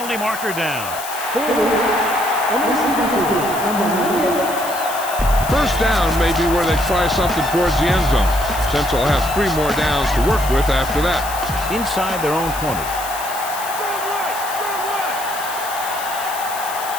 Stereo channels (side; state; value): left; noise; hiss, 10 dB below the sound